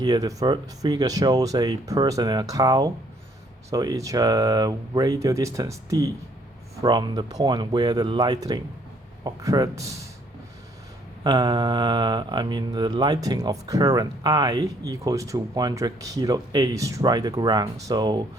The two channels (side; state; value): both; normal; correlation 0.65